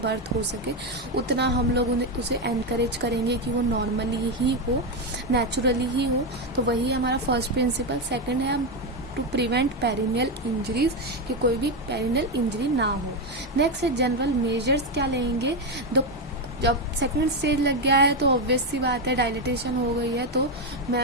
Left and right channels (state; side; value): normal; both; correlation 0.08